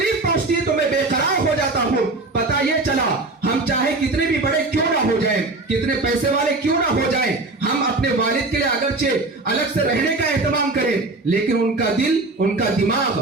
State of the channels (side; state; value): left; quieter; 3.2 dB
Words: پہنچتی ہے تو میں بے قرار ہو جاتا ہوں۔ پتہ یہ چلا ہم چاہے کتنے بھی بڑے کیوں نہ ہو جائیں، کتنے پیسے والے کیوں نہ ہو جائیں، ہم اپنے والد کے لیے اگرچہ الگ سے رہنے کا اہتمام کریں لیکن ان کا دل، ان کا دماغ